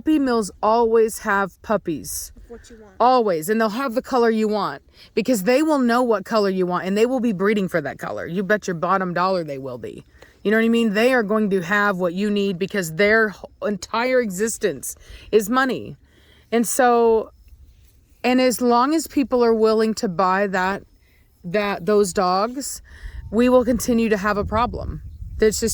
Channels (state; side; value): identical; both; correlation 1.00